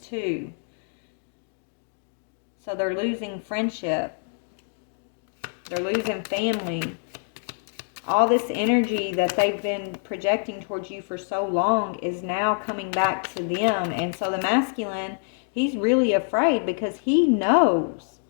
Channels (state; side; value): silent; right; digital silence